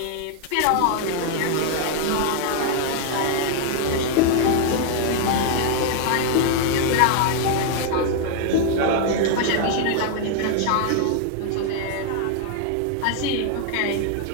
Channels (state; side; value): different; both; correlation 0.00